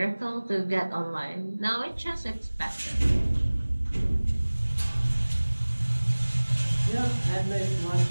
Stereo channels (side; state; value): both; inverted; correlation -1.00